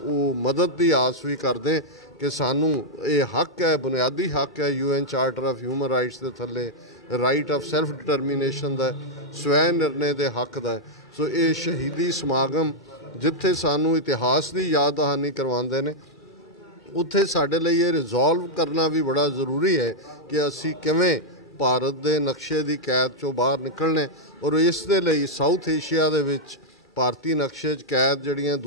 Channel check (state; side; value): normal; both; correlation -0.04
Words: ਮਦਦ ਦੀ ਆਸ ਵੀ ਕਰਦੇ ਕਿ ਸਾਨੂੰ ਇਹ ਹੱਕ ਹੈ, ਬੁਨਿਆਦੀ ਹੱਕ ਹੈ UN charter of human rights ਦੇ ਥੱਲੇ ਰਾਈਟ ਆਫ ਸੈਲਫ ਡਿਟਰਮੀਨੇਸ਼ਨ ਦਾ, ਸਵੈ ਨਿਰਣੇ ਦੇ ਹੱਕ ਦਾ। ਸੋ ਇਹ ਸ਼ਹੀਦੀ ਸਮਾਗਮ ਜਿੱਥੇ ਸਾਨੂੰ ਇਤਿਹਾਸ ਦੀ ਯਾਦ ਦਹਾਨੀ ਕਰਵਾਉਂਦੇ ਨੇ, ਉੱਥੇ ਸਾਡੇ ਲਈ ਇਹ ਰਿਜ਼ੋਲਵ ਕਰਨਾ ਵੀ ਬੜਾ ਜ਼ਰੂਰੀ ਹੈ ਕਿ ਅਸੀਂ ਕਿਵੇਂ ਭਾਰਤ ਦੇ ਨਕਸ਼ੇ ਦੀ ਕੈਦ 'ਚੋਂ ਬਾਹਰ ਨਿਕਲਣੇ। ਔਰ ਇਸ ਦੇ ਲਈ ਸਾਊਥ ਏਸ਼ੀਆ ਦੇ ਵਿੱਚ ਭਾਰਤੀ ਨਕਸ਼ੇ 'ਚ ਕੈਦ ਜਿਹੜੀਆਂ